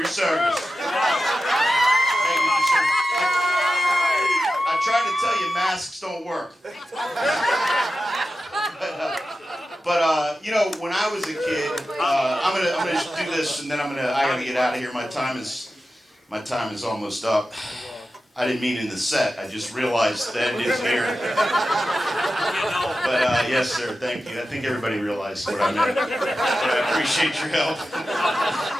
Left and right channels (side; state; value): both; normal; correlation 0.93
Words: service. Thank you for service. I tried to tell you masks don't work. But you know, when I was a kid, I'm gonna do this, and then I gotta get out of here. My time is almost up. I didn't mean in the set. I just realized the end is here. But yes, sir. Thank you. I think everybody realized what I meant. But I appreciate your help.